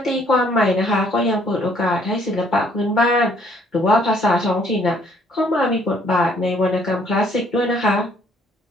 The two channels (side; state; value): both; normal; correlation 0.64